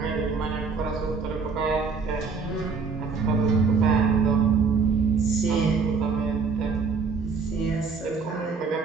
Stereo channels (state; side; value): quieter; left; 5.0 dB